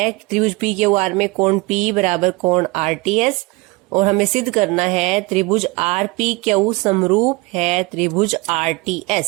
त्रिभुज पी क्यू आर में कोण पी बराबर कोण आर टी एस, और हमें सिद्ध करना है त्रिभुज आर पी क्यू समरूप है त्रिभुज R T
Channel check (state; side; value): quieter; left; 24.3 dB